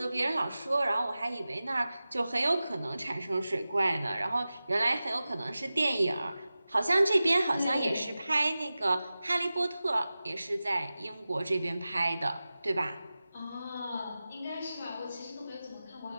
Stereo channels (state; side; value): inverted; both; correlation -0.95